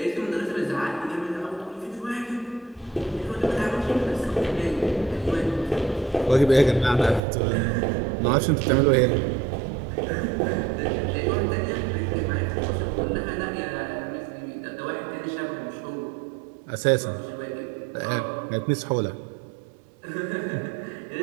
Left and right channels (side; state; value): left; drops out; at 7.2 s